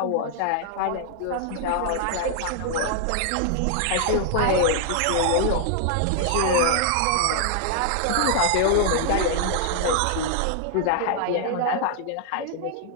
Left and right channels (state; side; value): different; both; correlation 0.00